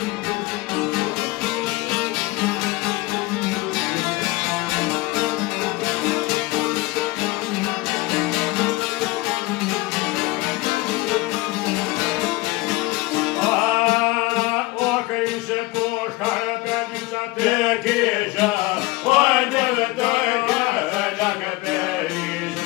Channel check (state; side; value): quieter; right; 21.6 dB